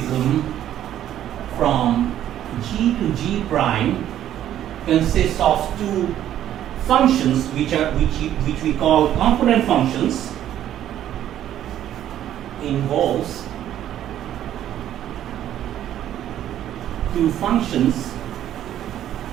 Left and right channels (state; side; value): quieter; left; 11.5 dB